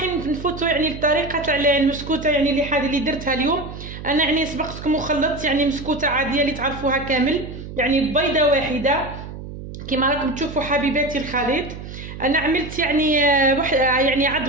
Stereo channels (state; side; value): noise; right; hum, 11 dB below the sound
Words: نفوتوا يعني الطريقه تاع المسكوته يعني اللي درتها اليوم. انا يعني سبقتكم وخلطت يعني مسكوته عاديه اللي تعرفوها كامل، يعني بيضه واحده كما راكم تشوفوا حبيباتي الخليط. انا عملت يعني